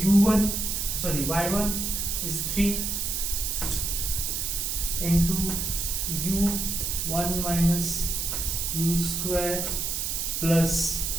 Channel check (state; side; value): noise; right; hiss, 1 dB below the sound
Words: is 3 into u 1 minus u square plus